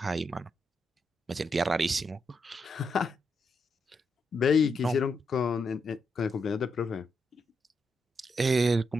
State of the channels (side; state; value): both; normal; correlation 0.82